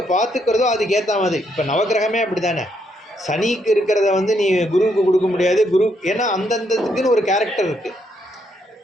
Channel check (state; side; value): normal; both; correlation 0.75